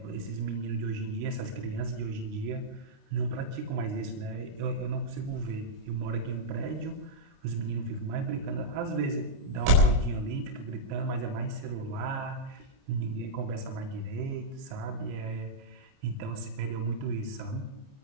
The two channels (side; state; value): left; late; 29 ms